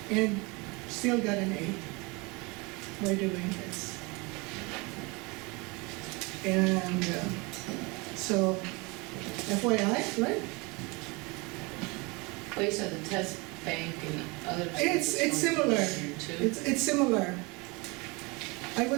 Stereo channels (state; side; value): quieter; left; 27.2 dB